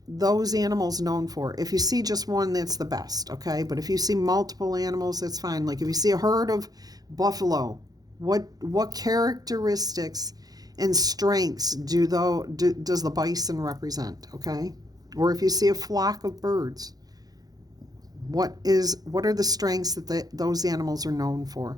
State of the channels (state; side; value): late; left; 0.19 ms